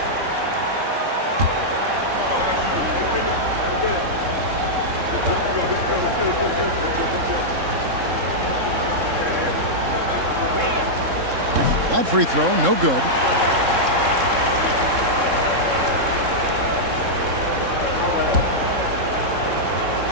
That free throw, no good.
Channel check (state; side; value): late; left; 3.7 ms